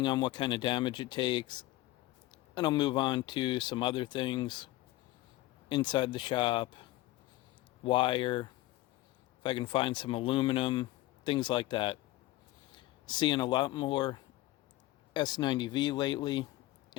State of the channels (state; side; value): quieter; right; 17.1 dB